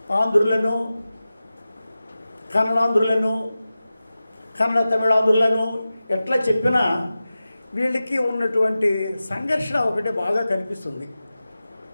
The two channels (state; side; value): inverted; both; correlation -0.95